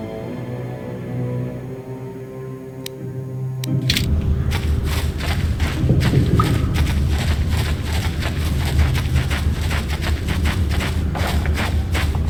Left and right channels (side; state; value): both; identical; correlation 1.00